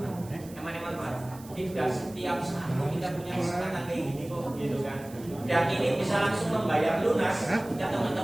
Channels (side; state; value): right; noise; hiss, 21 dB below the sound